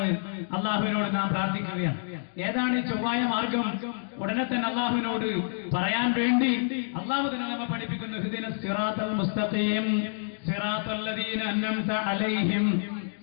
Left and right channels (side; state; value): right; silent; digital silence